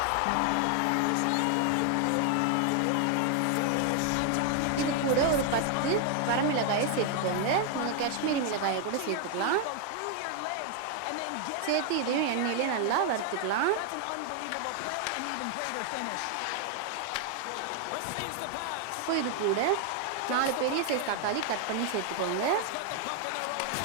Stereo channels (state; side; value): different; both; correlation 0.00